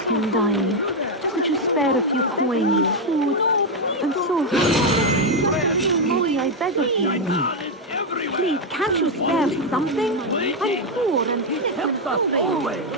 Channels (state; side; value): normal; both; correlation 0.03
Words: and dying. Could you spare a few coins, food? I'm so hungry. Molly, I beg of you. Please, can't you spare something? I'm poor and help us always.